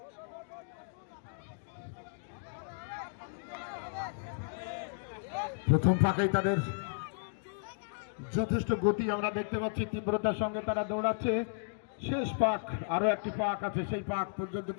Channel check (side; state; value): right; silent; digital silence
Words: প্রথম পাকেই তাদের যথেষ্ট গতি আমরা দেখতে পাচ্ছি, তীব্রতার সঙ্গে তারা দৌড়াচ্ছে। শেষ পাক, আরো একটি পাক আছে, সেই পাক পর্যন্ত